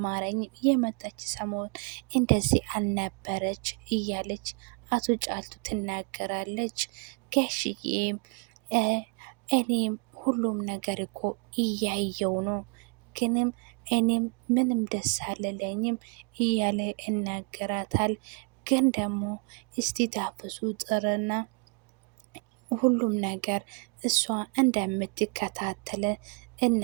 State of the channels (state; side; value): quieter; left; 33.7 dB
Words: የመጣች ሰሞን እንደዚህ አልነበረች እያለች አቶ ጫልቱ ትናገራለች። ጋሽዬም እኔም ሁሉም ነገር እኮ እያየው ነው ግንም እኔም ምንም ደስ አልለኝም እያለ ይናገራታል። ግን ደግሞ እስቲ ታፈሱ ጥርና ሁሉም ነገር እሷ እንደምትከታተለ